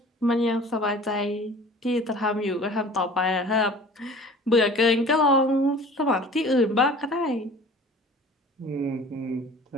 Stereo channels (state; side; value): normal; both; correlation 0.44